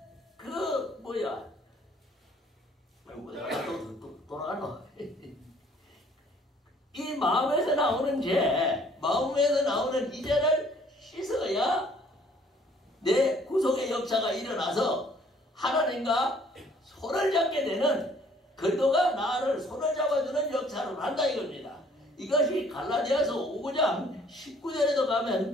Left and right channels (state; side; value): normal; both; correlation 0.59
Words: 돌아가노. 이 마음에서 나오는 죄, 마음에서 나오는 이 죄를 씻어야 내 구속의 역사가 일어나서 하나님 하나님과 손을 잡게 되는 그리스도가 나를 손을 잡아주는 역사를 한다 이겁니다. 이것이 갈라디아서 5장 19절에도